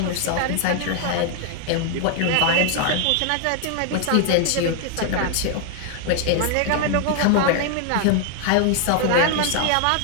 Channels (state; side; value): different; both; correlation 0.00